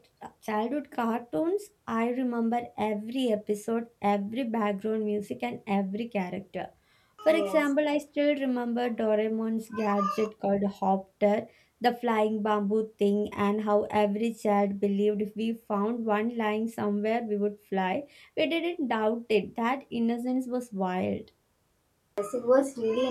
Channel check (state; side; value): identical; both; correlation 1.00